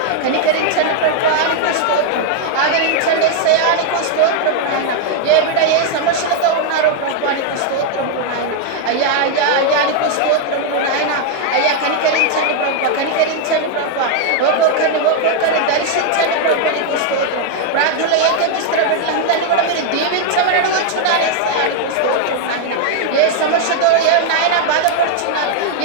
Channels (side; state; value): both; different; correlation 0.00